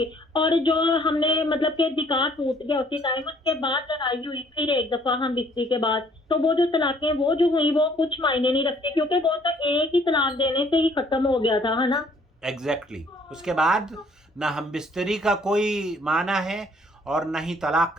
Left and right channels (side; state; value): both; normal; correlation 0.61